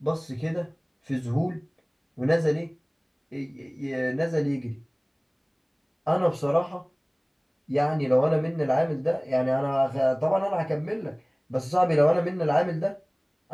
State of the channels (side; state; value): both; identical; correlation 1.00